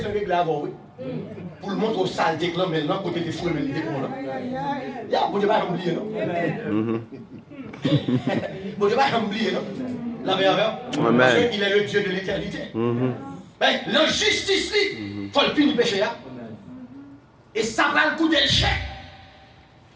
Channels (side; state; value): both; identical; correlation 1.00